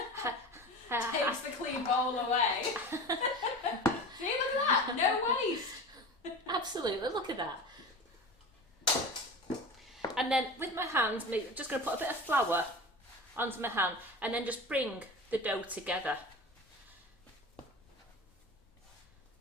Takes the clean bowl away. See, look at that. No waste. Absolutely, look at that. And then with my hands, I'm just going to put a bit of flour onto my hand and then just bring the dough together.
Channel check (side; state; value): both; normal; correlation 0.32